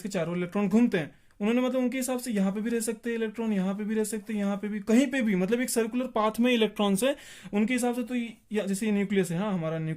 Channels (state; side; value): identical; both; correlation 1.00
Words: के चारों इलेक्ट्रॉन घूमते हैं। उन्होंने मतलब उनके हिसाब से यहाँ पे भी रह सकते हैं इलेक्ट्रॉन, यहाँ पे भी रह सकते हैं, यहाँ पे भी, कहीं पे भी, मतलब एक सर्कुलर पाथ में इलेक्ट्रॉन्स है उनके हिसाब से। तो जैसे ये न्यूक्लियस है, हाँ हमारा